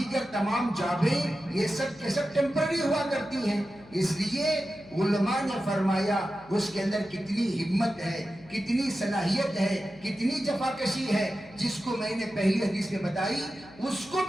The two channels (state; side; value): noise; left; hum, 23 dB below the sound